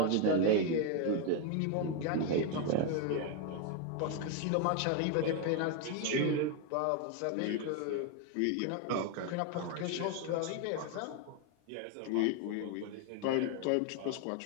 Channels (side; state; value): both; different; correlation 0.01